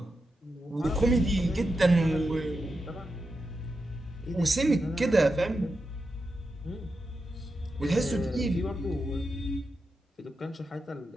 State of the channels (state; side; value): normal; both; correlation 0.88